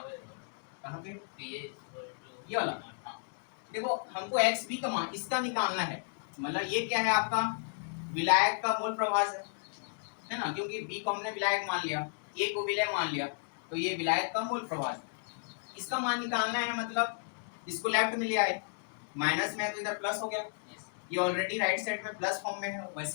कहाँ पे, ये वाला। देखो हमको XB का मान इसका निकालना है, मतलब ये क्या है आपका विलायक का मोल प्रवाह है ना, क्योंकि B को हमने विलायक मान लिया, A को विलय मान लिया, तो ये विलायक का मोल प्रवाह, इसका मान निकालना है। मतलब इसको लेफ्ट में ले आए, माइनस में है तो इधर प्लस हो गया, ये ऑलरेडी राइट साइड में प्लस फॉर्म में है,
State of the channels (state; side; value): silent; right; digital silence